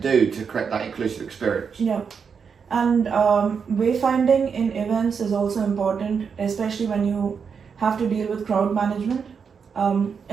to create that inclusive experience. Yeah. And wayfinding in events is also important, especially when you have to deal with crowd management,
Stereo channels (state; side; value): quieter; left; 6.2 dB